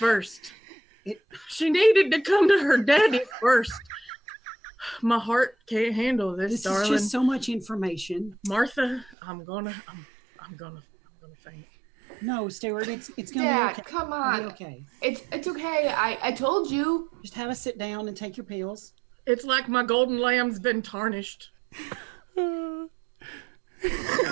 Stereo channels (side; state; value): left; drops out; at 9.2 s